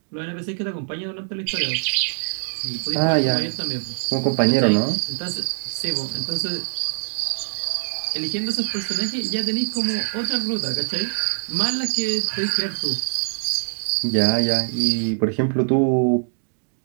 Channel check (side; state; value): left; silent; digital silence